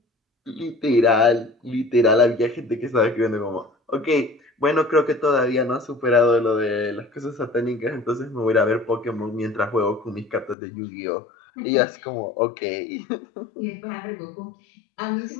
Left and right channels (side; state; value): right; drops out; at 10.6 s